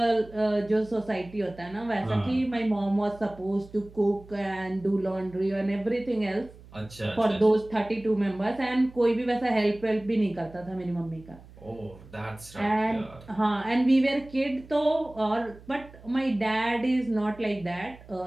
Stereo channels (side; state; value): right; noise; hum, 21 dB below the sound